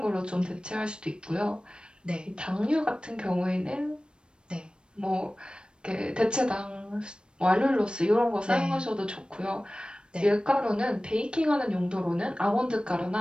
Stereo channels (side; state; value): left; late; 0.054 ms